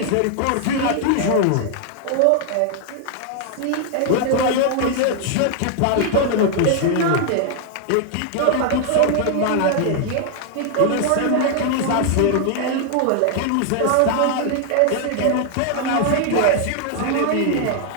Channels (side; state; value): both; different; correlation 0.00